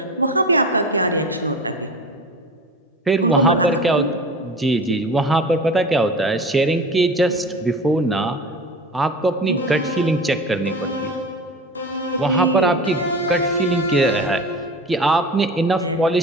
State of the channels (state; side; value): normal; both; correlation 0.33